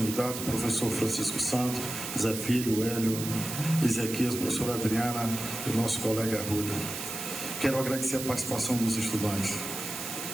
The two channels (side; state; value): right; noise; hiss, 6 dB below the sound